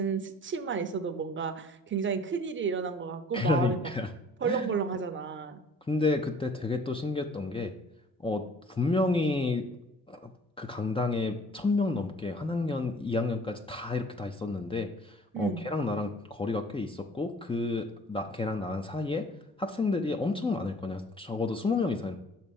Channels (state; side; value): normal; both; correlation 0.52